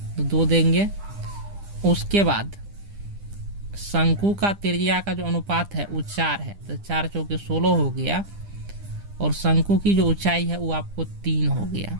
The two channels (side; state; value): left; late; 10 ms